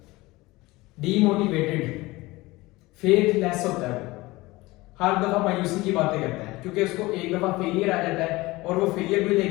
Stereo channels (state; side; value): quieter; right; 20.7 dB